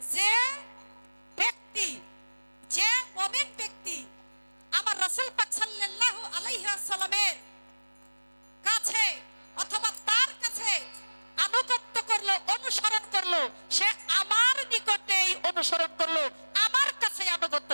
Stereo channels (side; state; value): both; inverted; correlation -1.00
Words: যে ব্যক্তি, যে মুমিন ব্যক্তি আমার রাসূল পাক সাল্লাল্লাহু আলাইহি ওয়াসাল্লামের কাছে অথবা তার কাছে আনুগত্য করলো, অনুসরণ করলো, সে আমার নিকটেই অনুসরণ করলো, আমার কাছে আনুগত্য